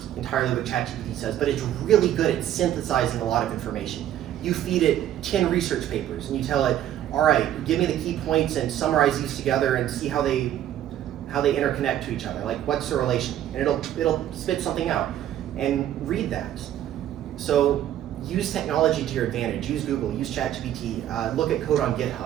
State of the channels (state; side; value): quieter; left; 11.6 dB